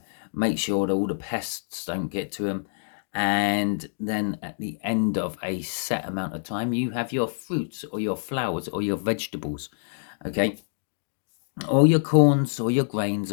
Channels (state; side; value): silent; right; digital silence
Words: make sure that all the pests don't get to them. And then at the end of a set amount of time, you have your fruits or your flowers or your vegetables, okay? Or your corns or your grains